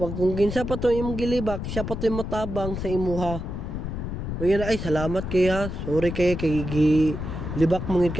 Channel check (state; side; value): noise; left; rumble, 5 dB below the sound